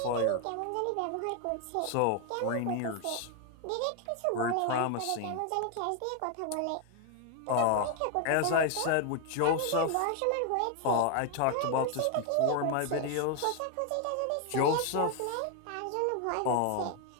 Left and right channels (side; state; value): both; different; correlation 0.01